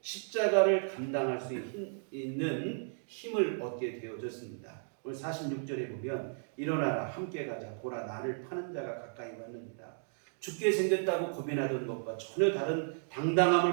십자가를 감당할 수 있는 힘을 얻게 되어졌습니다. 오늘 46절에 보면 일어나라 함께 가자 보라 나를 파는 자가 가까이 왔느니라. 죽게 생겼다고 고민하던 것과 전혀 다른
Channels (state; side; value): silent; left; digital silence